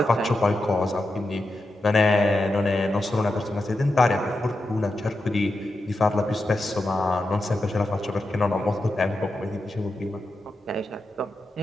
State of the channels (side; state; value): both; normal; correlation 0.89